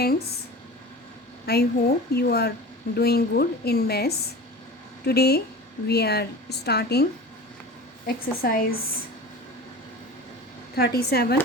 I hope you are doing good in maths. Today we are starting exercise 37.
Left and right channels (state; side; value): normal; both; correlation 0.35